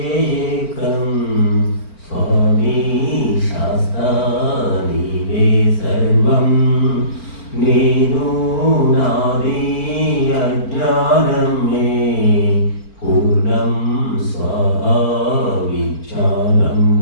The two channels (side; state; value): right; late; 4.4 ms